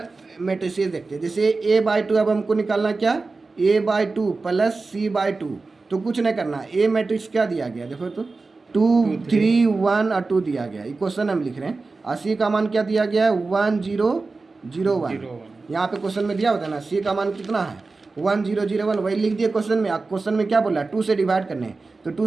मैट्रिसेस देखते हैं। जैसे a/2 अब हमको निकालना क्या, a/2 + c/2, तो कुछ नहीं करना, a मैट्रिक्स क्या दिया गया देखो तो 2 3 1 और 2 दिया गया, ये क्वेश्चन हम लिख रहे हैं। और c का मान क्या दिया गया है 1 0 0 1, यहाँ पे क्वेश्चन में दिया होता है ना, c का मान कितना है 1 0 0 1, वही लिख दिए क्वेश्चन में। क्वेश्चन में क्या बोला 2 से डिवाइड करने, तो 2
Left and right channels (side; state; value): left; quieter; 3.8 dB